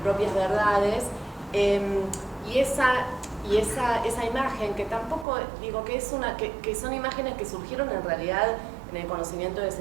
propias verdades, y esa imagen que tampoco digo que que son imágenes que surgieron en realidad en el conocimiento del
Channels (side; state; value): left; drops out; at 5.2 s